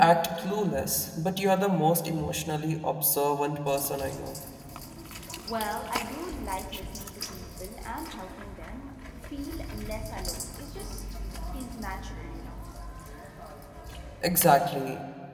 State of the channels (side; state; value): both; identical; correlation 1.00